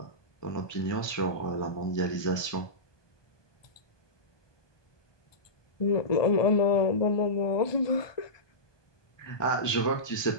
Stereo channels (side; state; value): right; late; 1.2 ms